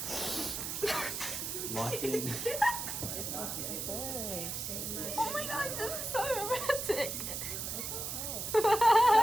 Locked in. Oh my god, this is so romantic.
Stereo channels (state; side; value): noise; right; hiss, 4 dB below the sound